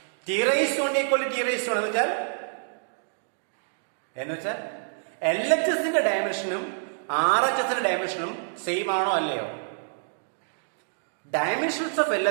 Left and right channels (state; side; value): silent; left; digital silence